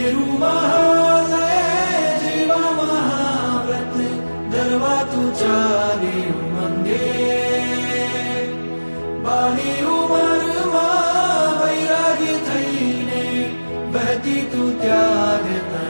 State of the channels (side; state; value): both; inverted; correlation -1.00